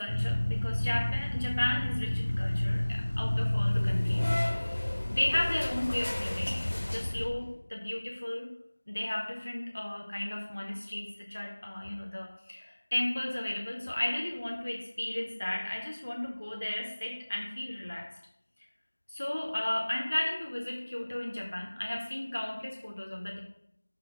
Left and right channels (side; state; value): both; inverted; correlation -1.00